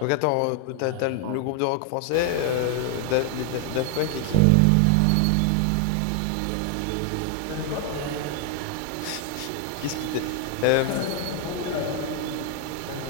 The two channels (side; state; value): both; different; correlation 0.00